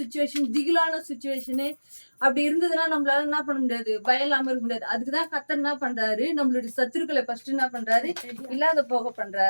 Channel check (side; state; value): both; inverted; correlation -1.00